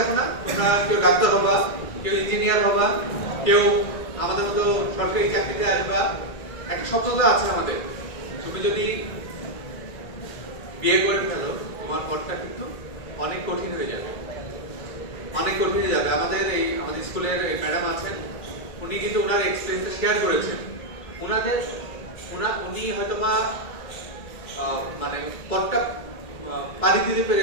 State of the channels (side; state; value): right; late; 1.9 ms